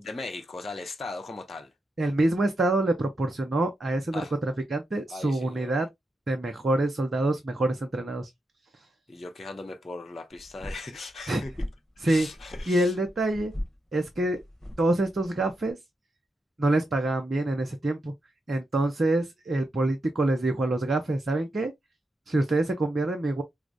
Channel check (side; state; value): both; normal; correlation 0.85